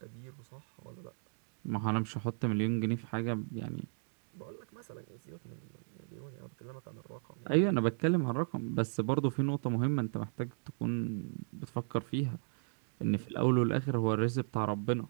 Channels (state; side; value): silent; left; digital silence